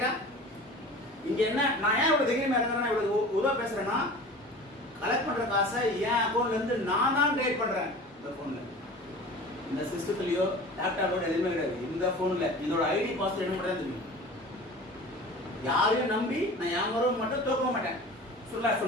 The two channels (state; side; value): normal; both; correlation 0.38